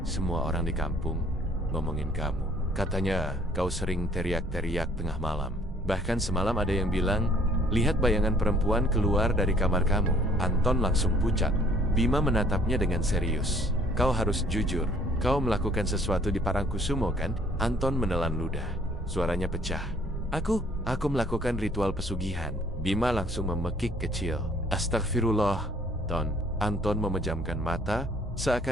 "Semua orang di kampung ngomongin kamu. Katanya kau sering teriak-teriak tengah malam. Bahkan semalam ada yang bilang, lihat bayangan perempuan keluar dari kamar kamu." Anton langsung pucat. Bima menatapnya dengan serius. "Kau harus jujur, kau melakukan sesuatu di Parangkusumo, kan?" Anton menelan ludah. Suaranya pecah. Aku melakukan ritual pesugihan." Bima langsung memekik kecil. "Astagfirullah, Ton." Anton memejamkan mata,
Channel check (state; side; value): normal; both; correlation 0.59